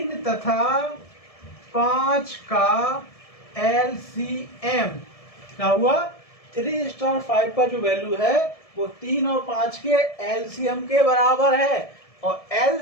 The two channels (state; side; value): late; right; 1.7 ms